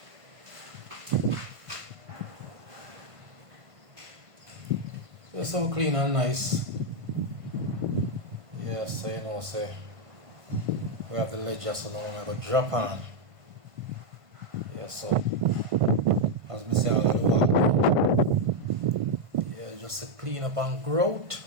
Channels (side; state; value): left; late; 1.5 ms